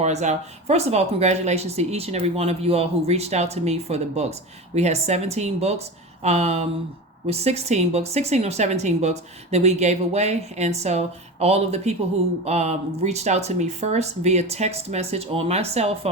out. First of all, congratulations to each and every one of you all who reached out to me for the books. We had 17 books. With 16 books, 16 or 17 books that we gave away. And so all of the people who reached out to me first via text message on my cell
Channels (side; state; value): both; normal; correlation 0.27